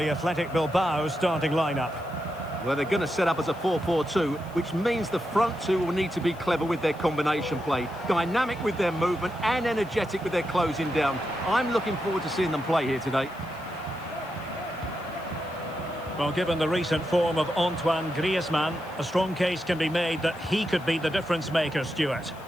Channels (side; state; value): left; noise; hiss, 26 dB below the sound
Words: Athletic Bilbao starting lineup. Well, they're going to set up as a 4-4-2, which means the front two will need to be clever with their combination play, dynamic with their movement and energetic with their closing down. I'm looking forward to seeing them play here today. Well, given the recent form of Antoine Griezmann, a strong case can be made that he could be the difference maker, Stuart.